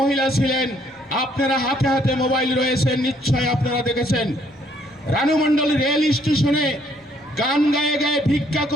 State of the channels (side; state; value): both; normal; correlation 0.66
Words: ছিলেন। আপনারা হাতে হাতে মোবাইল রয়েছে, নিশ্চয় আপনারা দেখেছেন। রানু মণ্ডল রেল স্টেশনে গান গায়ে গায়ে ভিক্ষা